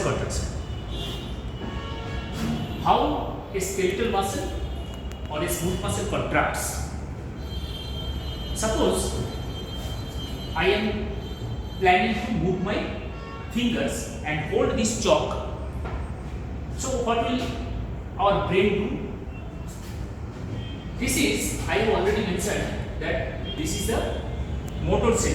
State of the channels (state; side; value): identical; both; correlation 1.00